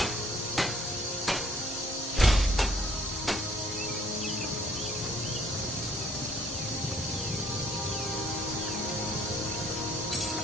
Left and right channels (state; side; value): normal; both; correlation 0.61